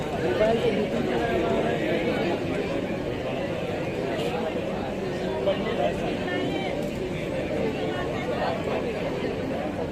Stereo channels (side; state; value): both; identical; correlation 1.00